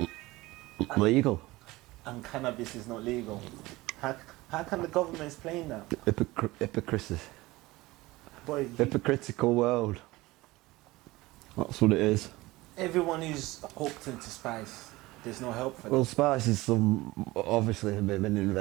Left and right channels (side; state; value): left; quieter; 19.9 dB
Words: legal. And cannabis is not legal. How can the government explain that? Hypocrisy. Boy, Hypocritical world. That's what it is. everyone who's hooked into spice, there's no help for them. Well, spice is obviously been